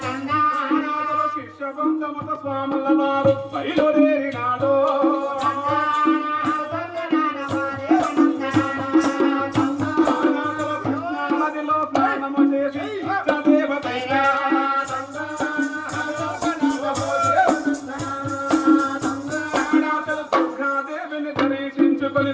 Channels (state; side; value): identical; both; correlation 1.00